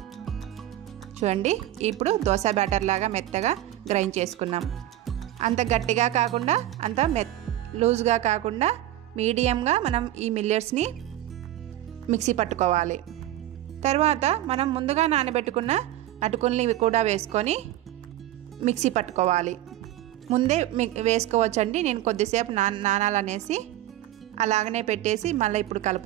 చూడండి, ఇప్పుడు దోశ బ్యాటర్ లాగా మెత్తగా గ్రైండ్ చేసుకున్నాం. అంత గట్టిగా కాకుండా అంత లూజ్గా కాకుండా మీడియంగా మనం ఈ మిల్లెట్స్ని మిక్సీ పట్టుకోవాలి. తర్వాత మనం ముందుగా నానబెట్టుకున్న అటుకుల్ని కూడా వేసుకొని మిక్సీ పట్టుకోవాలి. ముందే వేసుకోవచ్చండి, నేను కొద్దిసేపు నానాలనేసి అలాగనే పెట్టేసి మళ్ళీ ఇప్పుడు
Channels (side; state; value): left; quieter; 13.9 dB